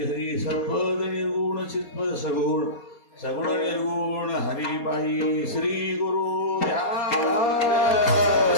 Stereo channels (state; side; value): late; right; 4.2 ms